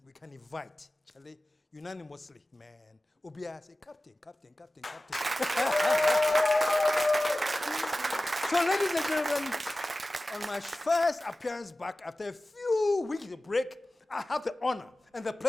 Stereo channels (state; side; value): normal; both; correlation 0.96